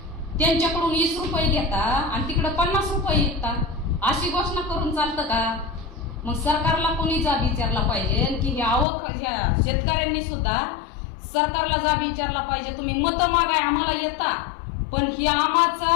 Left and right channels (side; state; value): right; drops out; at 8.8 s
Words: त्यांच्याकडून 20 रुपये घेता आणि तिकडे 50 रुपये विकतात. अशी घोषणा करून चालतं का? मग सरकारला कोणी जाब विचारला पाहिजे की ह्या शेतकऱ्यांनी सुद्धा सरकारला जाब विचारला पाहिजे. तुम्ही मतं मागाय आम्हाला येता, पण ही आम्हाचा